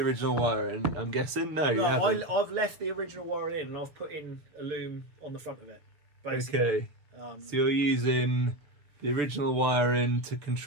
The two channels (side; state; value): left; late; 6.8 ms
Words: wiring, I'm guessing? No, you haven't. I've left the original wiring in and I've put in a loom on the front of it, basically. Okay. So you're using the original wiring to